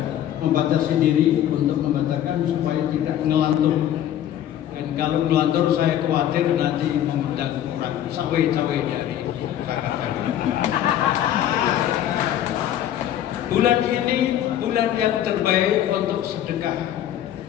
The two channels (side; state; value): right; quieter; 11.3 dB